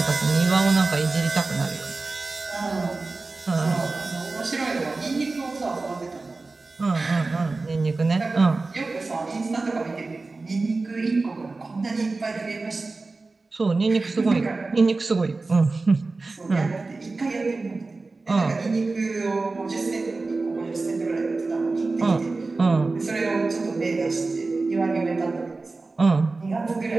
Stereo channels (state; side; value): quieter; left; 3.6 dB